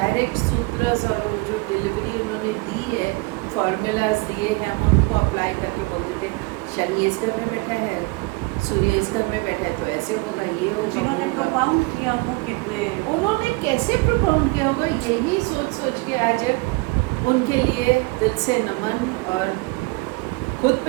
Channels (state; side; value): quieter; left; 25.8 dB